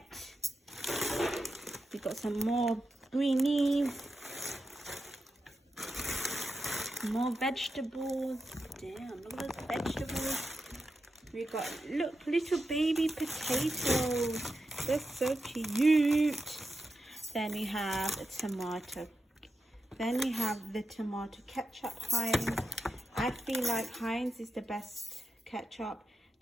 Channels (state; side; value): normal; both; correlation 0.89